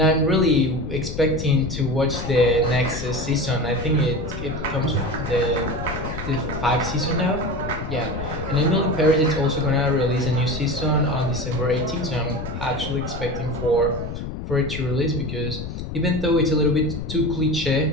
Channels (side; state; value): left; noise; rumble, 7 dB below the sound